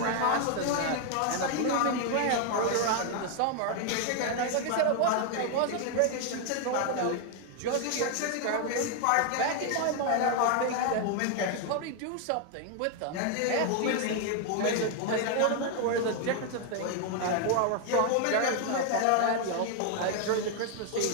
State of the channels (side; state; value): both; different; correlation 0.00